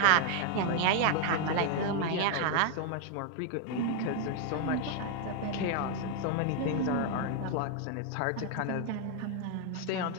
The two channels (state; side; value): different; both; correlation 0.00